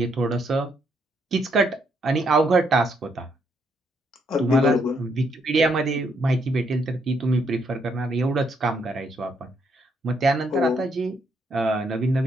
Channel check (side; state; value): both; normal; correlation 0.74